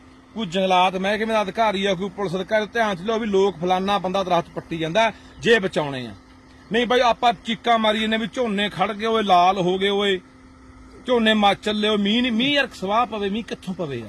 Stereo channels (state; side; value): identical; both; correlation 1.00